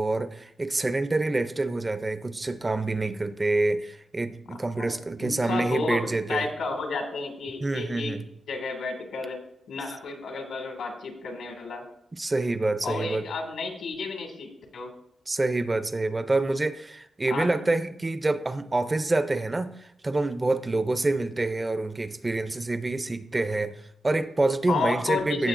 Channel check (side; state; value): both; normal; correlation 0.93